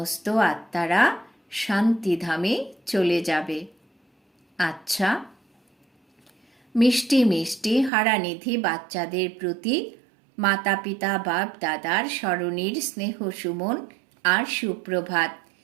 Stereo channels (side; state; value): left; drops out; at 7.9 s